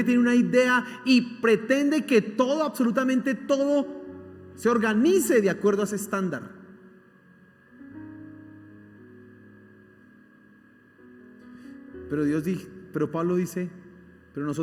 tiene una idea y pretende que todo, absolutamente todo, se organice de acuerdo a ese estándar. Pero Pablo dice, pero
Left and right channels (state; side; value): identical; both; correlation 1.00